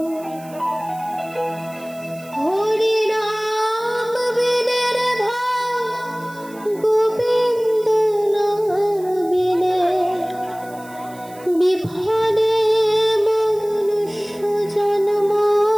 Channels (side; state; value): right; noise; hiss, 23 dB below the sound